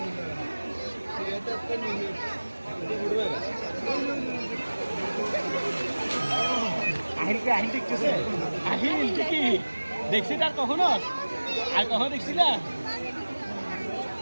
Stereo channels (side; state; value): both; inverted; correlation -1.00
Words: দেখছি তার কখনো আর কখনো দেখছি না